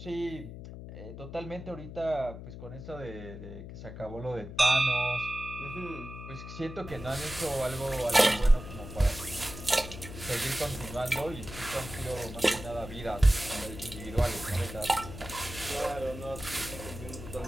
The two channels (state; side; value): noise; left; hum, 11 dB below the sound